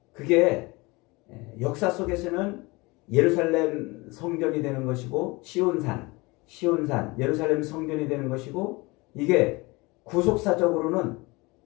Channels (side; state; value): right; quieter; 24.2 dB